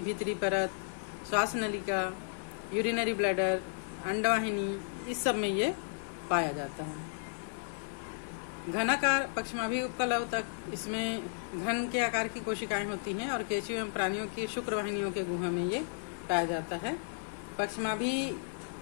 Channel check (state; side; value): silent; right; 55 dB below the other